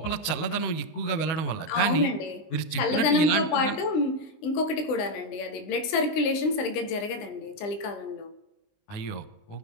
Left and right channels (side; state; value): right; late; 20 ms